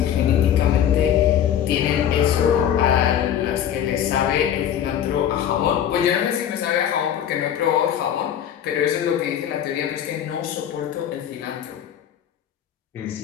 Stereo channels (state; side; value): quieter; right; 9.8 dB